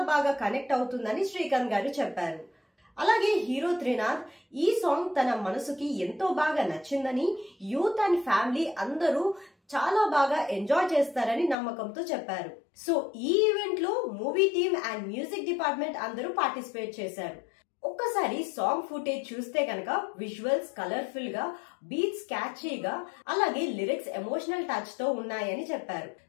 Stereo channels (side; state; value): right; drops out; at 11.6 s